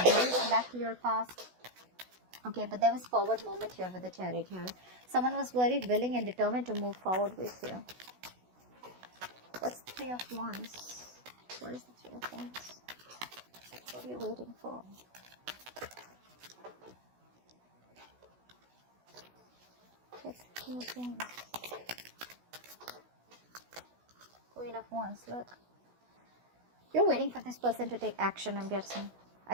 then you went back to your past. Okay, but there was forward movement here with the Chariot here. Someone was very willing and determined to move forward with you. What's the Three of Wands? What is the Three of Wands? What are you waiting for? What's the Three of Wands? Queen of Wands, look. You're waiting for this person to take action, I'm guessing. I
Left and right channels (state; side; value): late; left; 16 ms